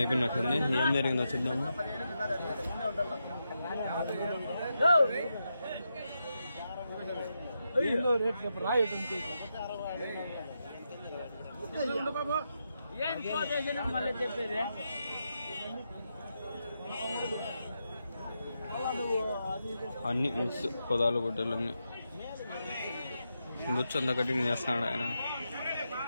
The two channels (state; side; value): inverted; both; correlation -0.86